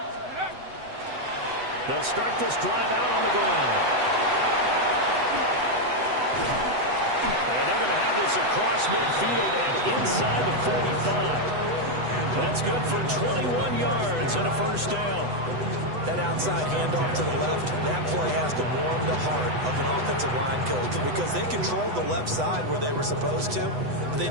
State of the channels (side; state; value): left; late; 8.0 ms